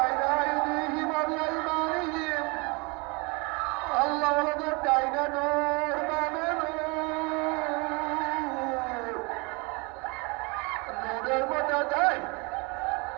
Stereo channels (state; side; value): quieter; left; 29.2 dB